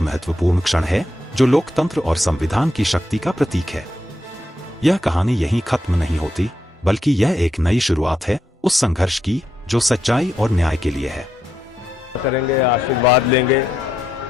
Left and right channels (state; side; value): normal; both; correlation 0.81